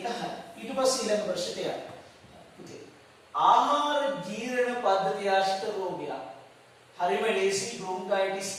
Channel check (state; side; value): identical; both; correlation 1.00